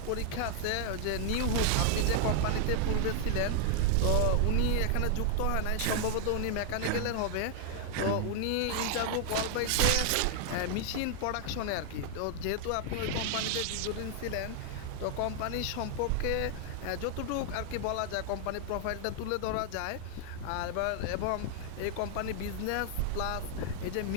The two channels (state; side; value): different; both; correlation 0.00